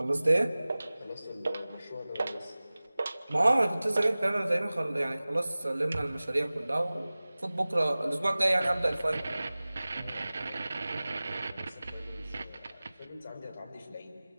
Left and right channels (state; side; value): inverted; both; correlation -0.98